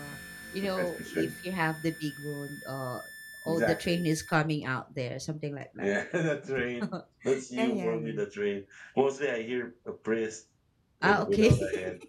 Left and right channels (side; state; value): both; identical; correlation 1.00